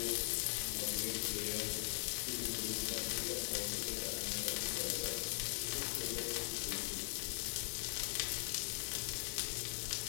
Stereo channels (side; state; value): right; silent; digital silence